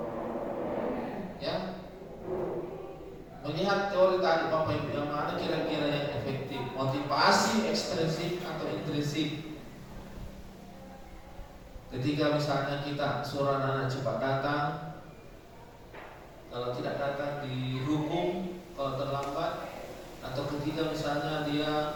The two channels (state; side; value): identical; both; correlation 1.00